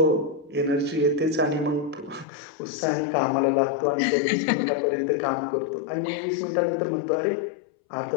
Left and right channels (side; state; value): right; drops out; at 2.2 s